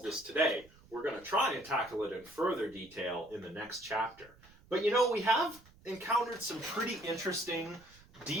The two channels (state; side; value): noise; right; rumble, 25 dB below the sound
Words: this today. We're going to try and tackle it in further detail in the next chapter. But we have encountered some pretty interesting